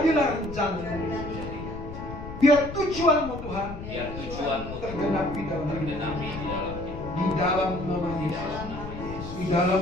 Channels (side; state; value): left; noise; rumble, 10 dB below the sound